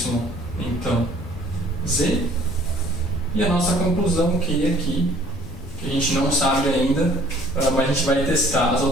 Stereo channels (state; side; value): noise; left; rumble, 13 dB below the sound